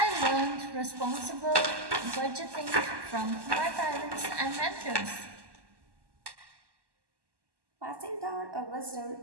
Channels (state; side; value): late; left; 1.1 ms